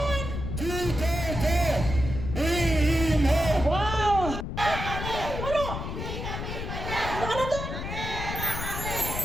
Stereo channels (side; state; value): left; noise; rumble, 5 dB below the sound